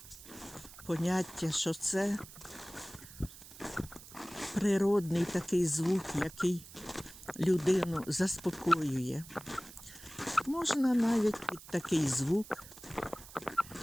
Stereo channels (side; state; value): right; noise; hiss, 17 dB below the sound